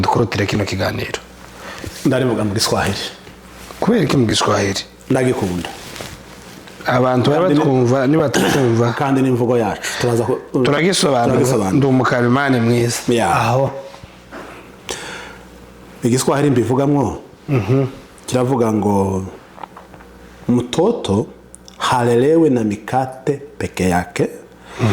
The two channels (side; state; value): both; identical; correlation 1.00